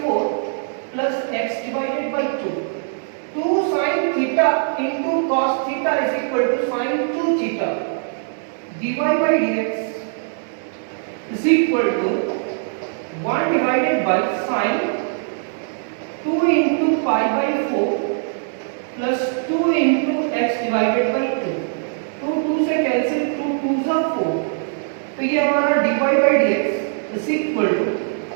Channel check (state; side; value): silent; left; digital silence